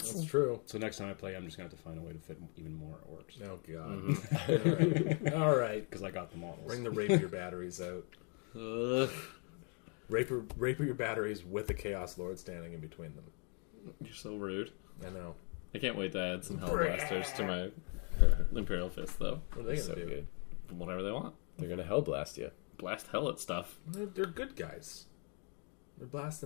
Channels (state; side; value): quieter; right; 38.1 dB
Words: That's true. So next time I play, I'm just gonna have to find a way to fit even more orcs Oh god. All right. because I got the models. Bring the rapier batteries out. Ugh. Rapier batteries with a Chaos Lord standing in between them. You're so rude. I know. I can't wait to add some Hellblasters to my Imperial Fist, though. What are they So gonna do? good. Whatever they want. They're gonna hell blast you. Blast hell at stuff. They're good guys. They're